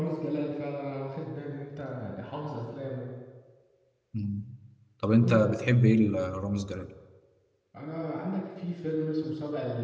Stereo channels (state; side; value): identical; both; correlation 1.00